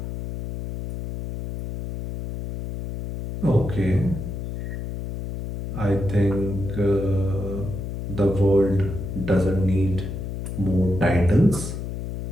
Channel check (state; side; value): noise; left; hum, 6 dB below the sound